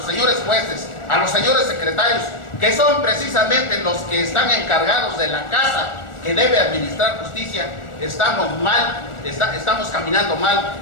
señores jueces, a los señores secretarios, que son precisamente los que están encargados de la casa que debe administrar justicia, estamos mal, estamos caminando mal,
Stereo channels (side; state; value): right; late; 1.4 ms